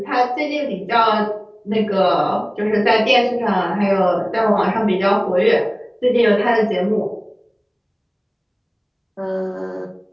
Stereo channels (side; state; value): both; identical; correlation 1.00